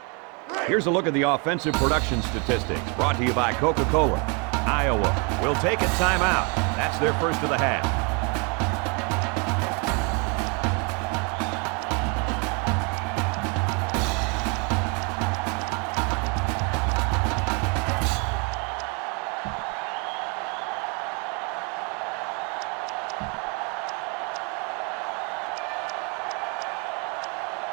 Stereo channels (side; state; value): left; quieter; 33.8 dB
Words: Here's a look at the offensive production statistics brought to you by Coca-Cola. Iowa will take a timeout. That's their first of the half.